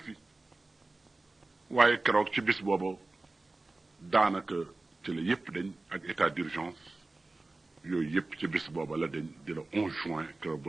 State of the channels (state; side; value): quieter; left; 3.2 dB